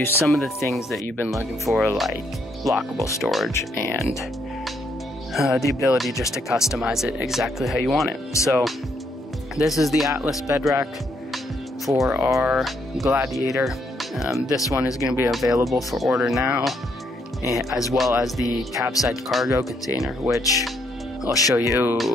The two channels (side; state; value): both; normal; correlation 0.73